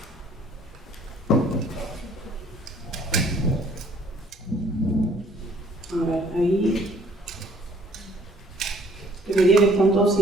A ver, ahí. Debería que están todos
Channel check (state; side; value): normal; both; correlation 0.59